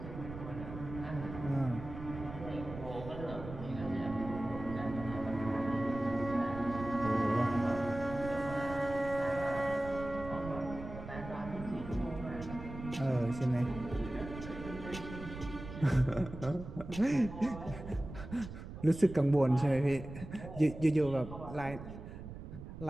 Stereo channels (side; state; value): right; noise; rumble, 11 dB below the sound